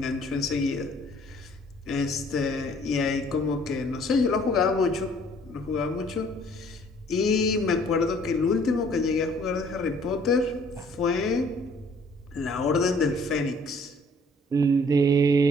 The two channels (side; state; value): both; normal; correlation 0.58